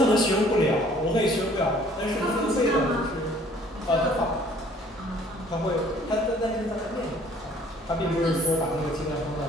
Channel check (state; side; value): normal; both; correlation 0.56